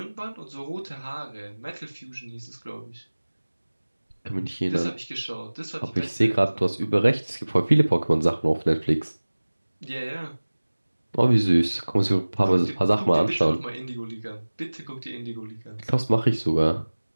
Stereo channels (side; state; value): both; inverted; correlation -1.00